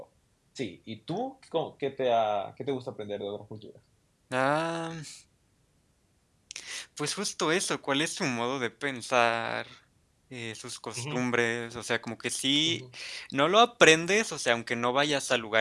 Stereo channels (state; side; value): identical; both; correlation 1.00